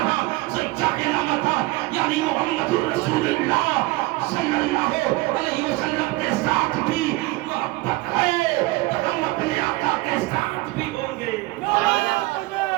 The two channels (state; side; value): quieter; left; 20.5 dB